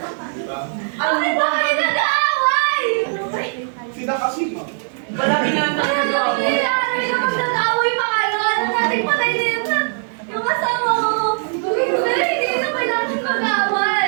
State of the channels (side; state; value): left; silent; 61 dB below the other